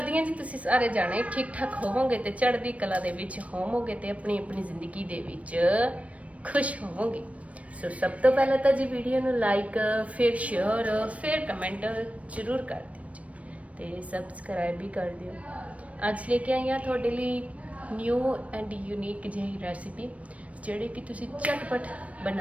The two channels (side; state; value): left; late; 0.065 ms